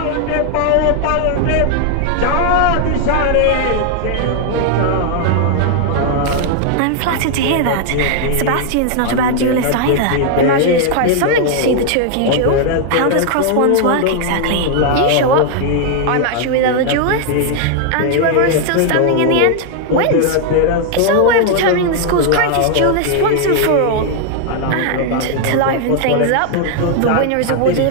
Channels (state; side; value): different; both; correlation 0.00